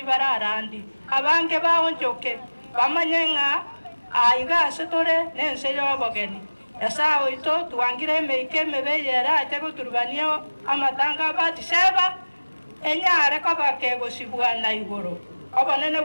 bararandi abange baonjoke bamanyenga aigase tore nense y'obogeni Asawe to tuangire emeike mebeyera ate guturubania amatanga Batiseba enyare ko bakegosibwa na igoro obonene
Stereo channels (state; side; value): inverted; both; correlation -1.00